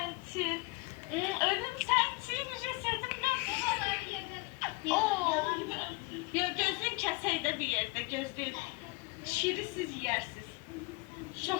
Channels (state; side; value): quieter; right; 26.5 dB